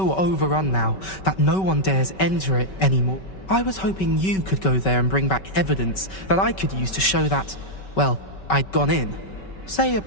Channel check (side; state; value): right; late; 5.3 ms